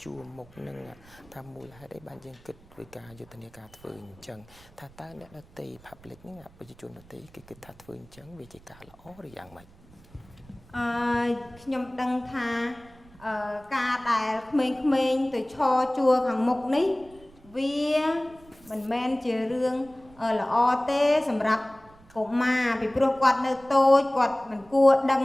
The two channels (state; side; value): noise; right; rumble, 25 dB below the sound